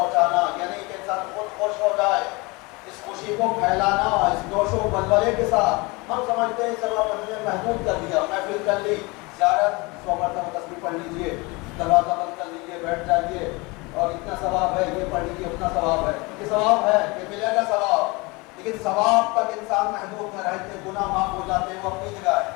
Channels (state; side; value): quieter; right; 25.7 dB